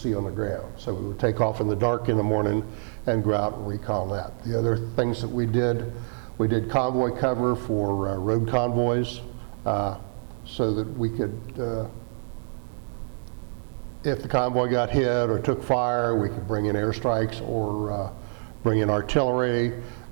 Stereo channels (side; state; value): left; silent; 61 dB below the other